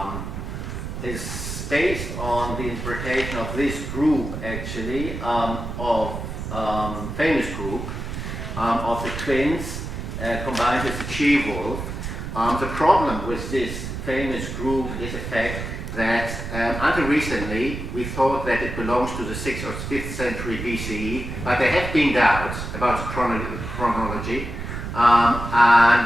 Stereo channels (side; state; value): right; noise; rumble, 6 dB below the sound